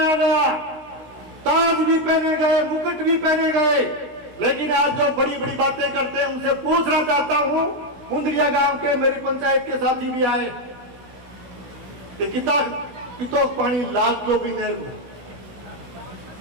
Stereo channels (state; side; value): late; left; 16 ms